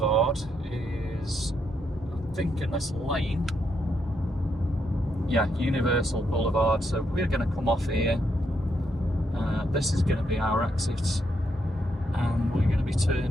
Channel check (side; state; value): both; normal; correlation 0.78